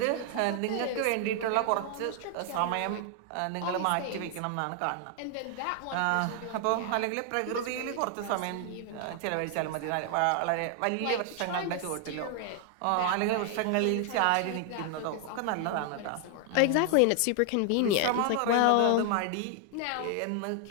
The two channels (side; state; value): both; different; correlation 0.00